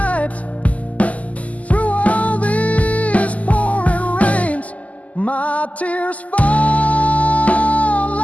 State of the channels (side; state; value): right; late; 0.073 ms